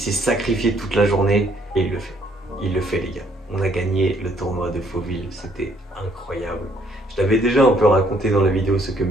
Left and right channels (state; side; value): normal; both; correlation 0.66